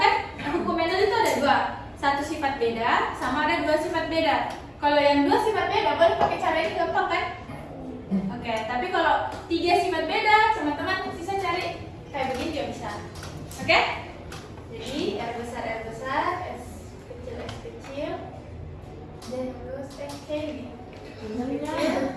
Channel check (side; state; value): both; identical; correlation 1.00